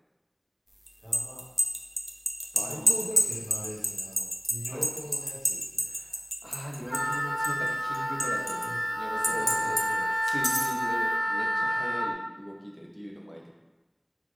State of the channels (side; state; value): both; identical; correlation 1.00